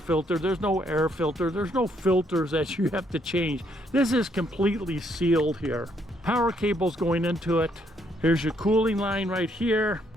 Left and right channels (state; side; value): normal; both; correlation 0.71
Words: there's no air filter, there's no filters that you have to change. This is completely sealed here. Power cables going into it. Here's your cooling line right here.